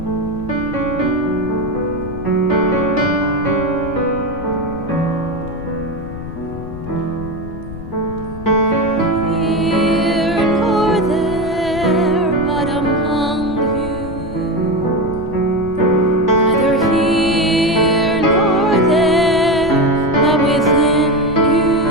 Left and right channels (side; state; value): left; noise; rumble, 12 dB below the sound